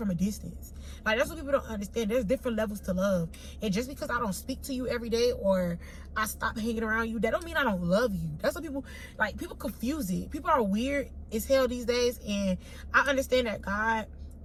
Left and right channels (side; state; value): both; identical; correlation 1.00